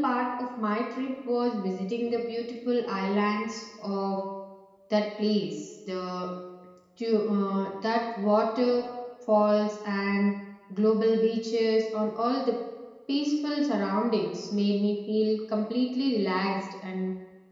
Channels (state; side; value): identical; both; correlation 1.00